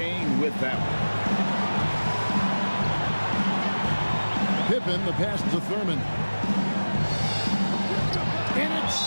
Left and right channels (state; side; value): inverted; both; correlation -1.00